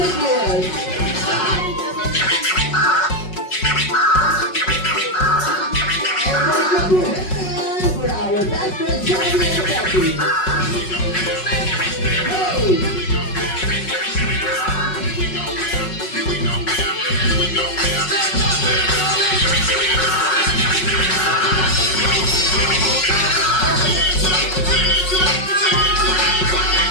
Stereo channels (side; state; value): right; late; 5.4 ms